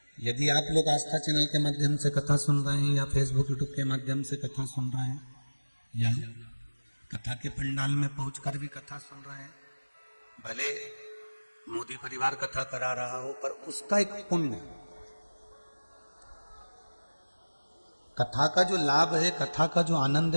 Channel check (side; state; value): both; inverted; correlation -1.00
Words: यदि आप लोग आस्था चैनल के माध्यम से कथा सुन रहे हैं या फेसबुक यूट्यूब के माध्यम से कथा सुन रहे हैं या कथा के पंडाल में पहुंचकर भी कथा सुन रहे हैं, भले मोदी परिवार कथा करा रहा हो पर उसका एक पुण्य, कथा का जो लाभ है, कथा का जो आनंद